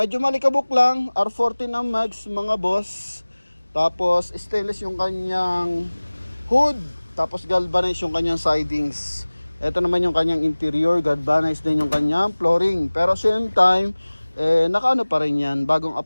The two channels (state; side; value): inverted; both; correlation -1.00